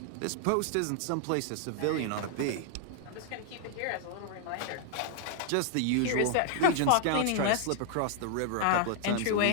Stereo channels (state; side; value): different; both; correlation 0.00